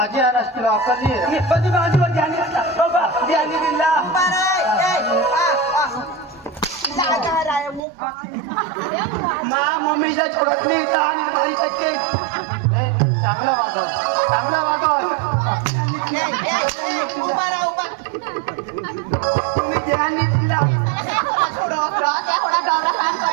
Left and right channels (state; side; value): drops out; left; at 7.8 s